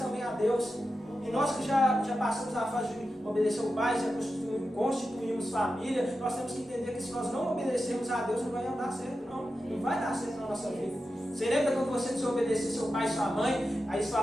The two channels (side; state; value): both; normal; correlation 0.91